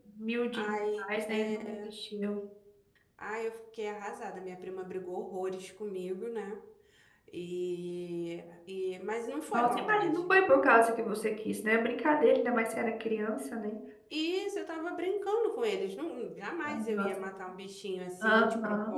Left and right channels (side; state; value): both; identical; correlation 1.00